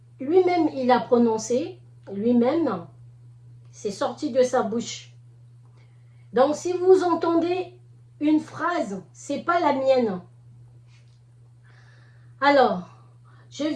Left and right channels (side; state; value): both; identical; correlation 1.00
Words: lui-même il a prononcées, lui-même, c'est sorti de sa bouche. Donc, si vous entendez une phrase, c'est pas la mienne. Alors, je